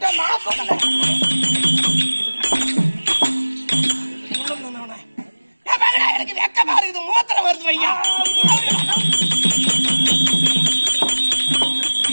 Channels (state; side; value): inverted; both; correlation -1.00